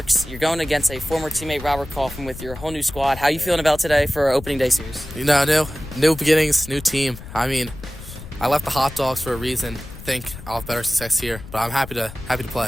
You're going against a former teammate, Robert Kaufman, with your whole new squad. How are you feeling about today for our opening day series? You know, new beginnings, new team. I mean, I left the hot dogs for a reason. I think I'll have better success here, but I'm happy to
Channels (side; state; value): left; noise; rumble, 13 dB below the sound